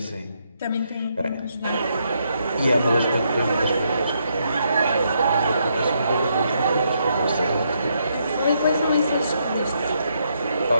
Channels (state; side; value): inverted; both; correlation -0.76